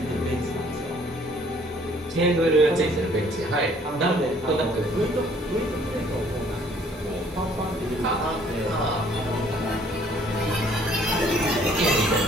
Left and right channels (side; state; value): both; normal; correlation 0.60